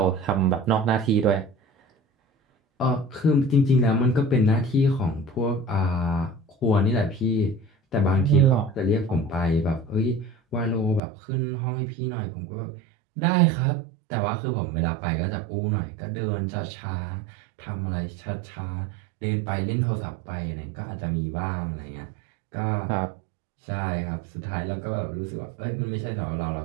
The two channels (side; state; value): left; drops out; at 11.0 s